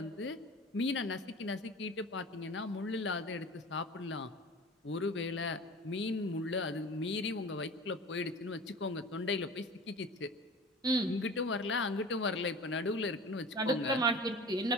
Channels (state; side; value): normal; both; correlation 0.38